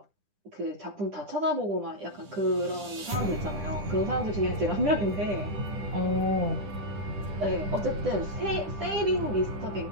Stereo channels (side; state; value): left; late; 10 ms